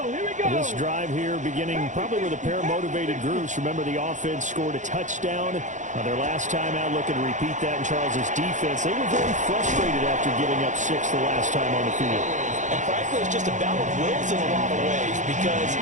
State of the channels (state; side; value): late; left; 0.36 ms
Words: here we go. This drive here beginning probably with a pair of motivated groups. Remember, the offense scored a touchdown their last time out. Looking to repeat that in Charles's defense. They were very frustrated after giving up 6 the last time on the field. And frankly, it's just a battle of wills in a lot of ways because